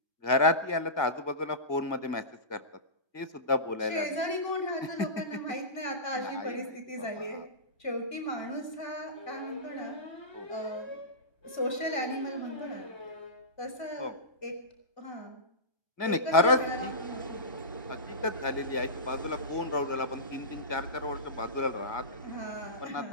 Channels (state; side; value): late; right; 1.9 ms